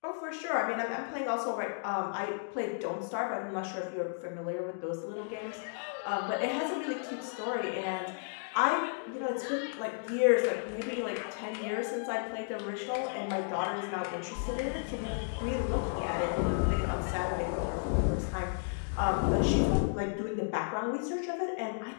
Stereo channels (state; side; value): silent; right; digital silence